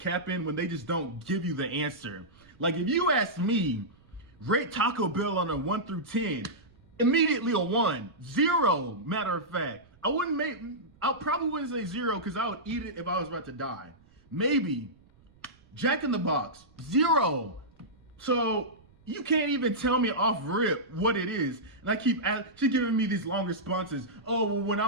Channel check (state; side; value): noise; right; rumble, 29 dB below the sound